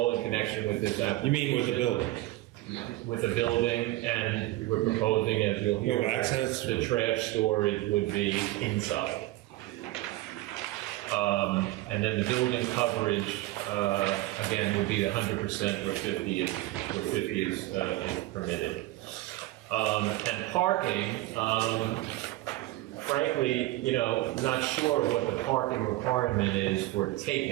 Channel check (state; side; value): quieter; left; 17.5 dB